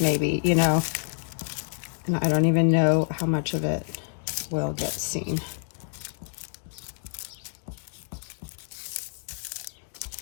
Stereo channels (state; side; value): silent; right; digital silence